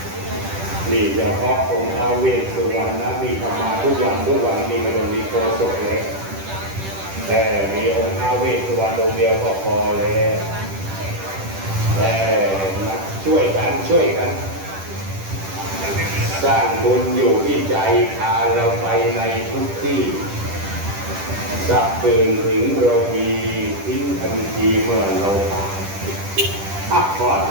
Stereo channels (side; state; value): left; late; 10 ms